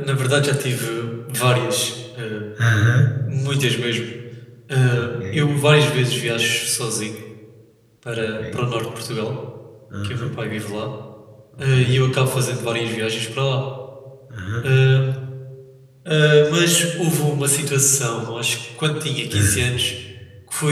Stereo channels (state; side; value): identical; both; correlation 1.00